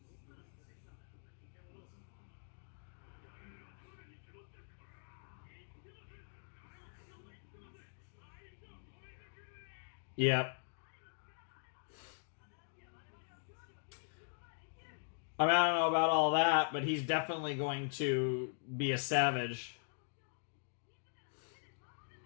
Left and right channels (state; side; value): silent; right; digital silence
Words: Yep. I mean, I don't know about all that, but he's definitely going to be a savage.